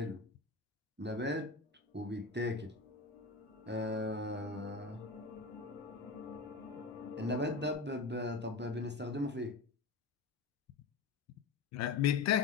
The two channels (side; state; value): right; quieter; 4.1 dB